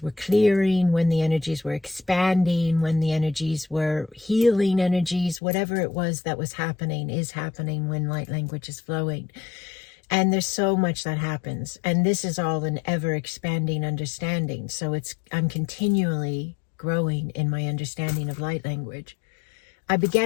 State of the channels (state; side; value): drops out; right; at 5.4 s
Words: were clearing, when the energies were expanding, when the energies were healing energies, whatever it was that was happening is happening when light language is flowing. And there's so much that happens. And this is all an ever expanding understanding. So I'm continually growing in my understanding of light language. I